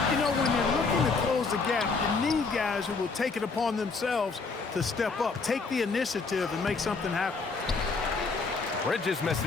you know, when you're looking to close the gap, you need guys who will take it upon themselves to step up, take the initiative, and make something happen. Bridges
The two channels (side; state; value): right; quieter; 4.4 dB